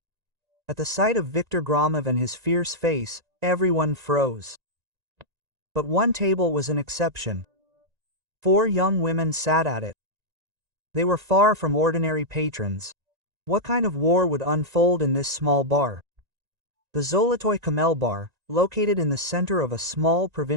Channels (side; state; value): left; late; 1.9 ms